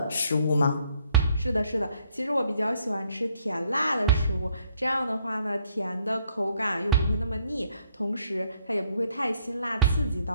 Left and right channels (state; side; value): inverted; both; correlation -0.68